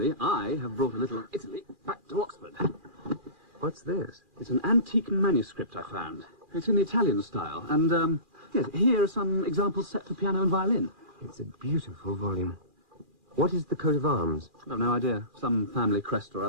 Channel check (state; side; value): late; left; 2.4 ms